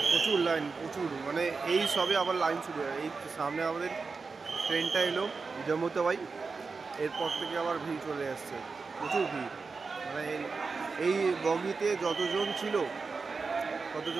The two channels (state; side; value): quieter; left; 4.5 dB